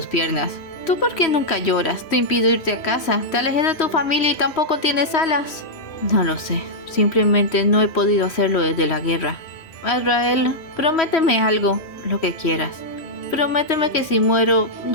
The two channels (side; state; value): right; late; 3.1 ms